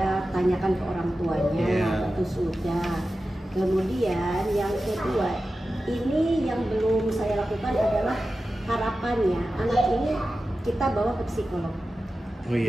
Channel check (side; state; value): both; normal; correlation 0.93